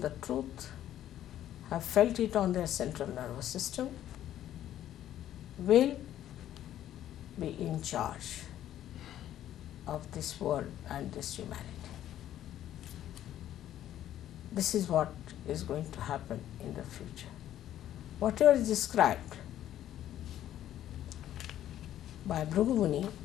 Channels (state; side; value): quieter; right; 12.0 dB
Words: the truth, have felt it on their central nervous system, will be in charge of this world and this humanity. This is what is going to happen in the future. Whatever is described by Bhrigu Muni